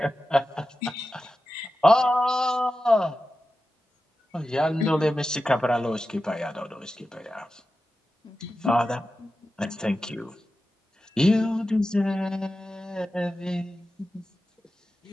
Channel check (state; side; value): normal; both; correlation 0.92